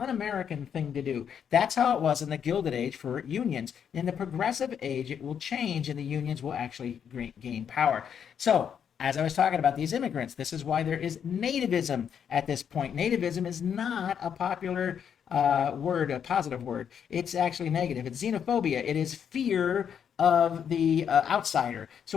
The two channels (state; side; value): quieter; right; 8.0 dB